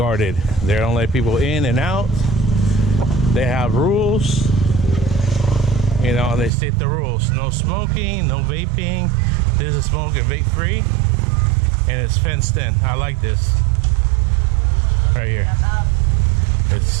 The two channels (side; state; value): left; drops out; at 6.5 s